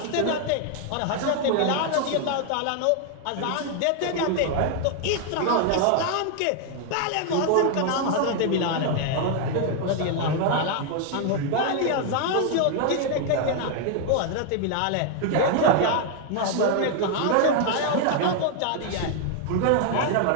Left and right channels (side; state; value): both; different; correlation 0.00